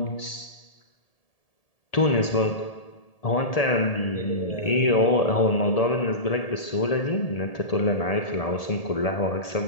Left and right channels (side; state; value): right; late; 1.7 ms